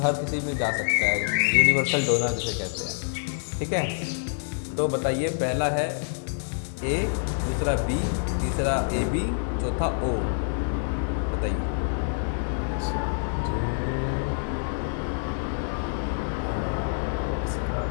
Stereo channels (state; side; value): silent; right; digital silence